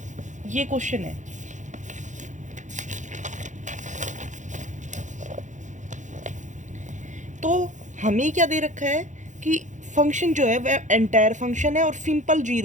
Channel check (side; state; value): left; late; 0.35 ms